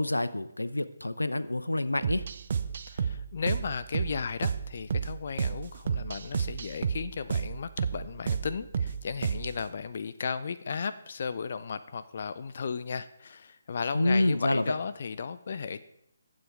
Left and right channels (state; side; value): inverted; both; correlation -0.85